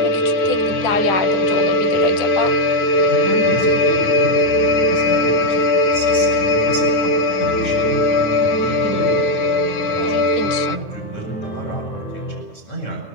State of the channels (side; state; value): right; late; 9.5 ms